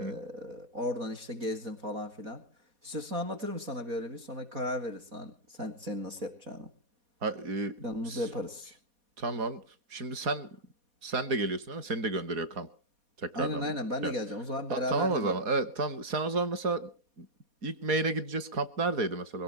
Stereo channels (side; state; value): left; late; 4.2 ms